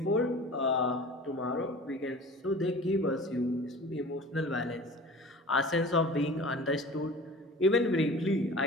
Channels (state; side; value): normal; both; correlation 0.41